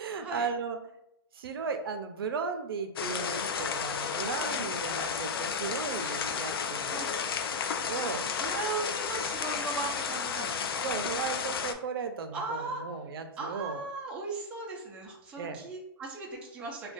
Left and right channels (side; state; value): both; normal; correlation 0.00